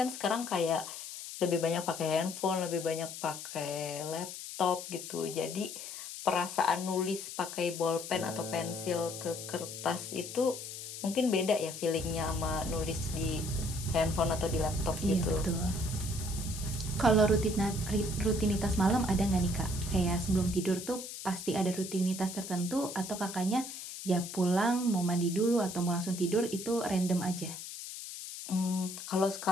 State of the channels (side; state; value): left; noise; hiss, 9 dB below the sound